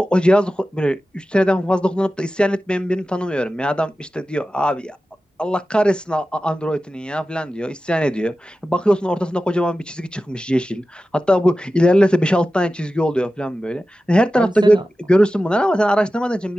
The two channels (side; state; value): both; normal; correlation 0.94